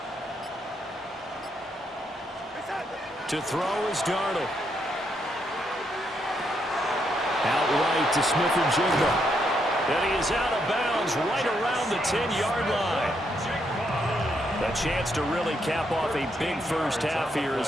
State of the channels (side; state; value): both; normal; correlation 0.77